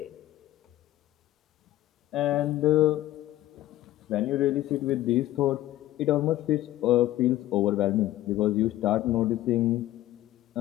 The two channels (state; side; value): quieter; right; 14.9 dB